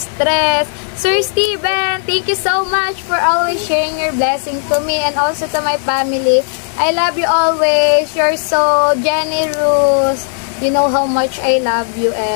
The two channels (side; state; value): right; silent; digital silence